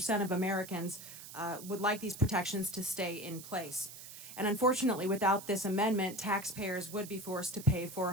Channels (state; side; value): noise; right; hiss, 13 dB below the sound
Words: of Americans would like these protections to stay in place. And unfortunately, without this amendment, taxpayers would be forced to pay for